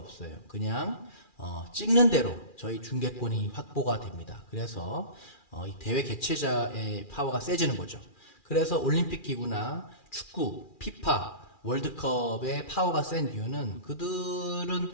그냥 찍는 대로 저희 중개권이 확보가 됩니다. 그래서 이 대회 개최자의 파워가 세지는 거죠. 그래서 올림픽 기구나 축구, 피파, 월드컵의 파워가 센 이유는 그들은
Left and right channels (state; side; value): late; right; 2.4 ms